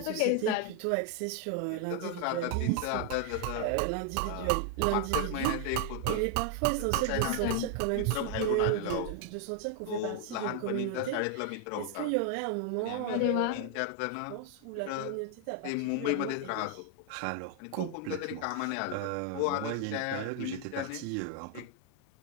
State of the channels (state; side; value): different; both; correlation 0.00